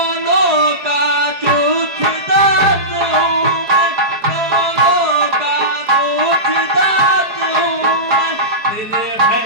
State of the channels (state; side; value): late; left; 4.7 ms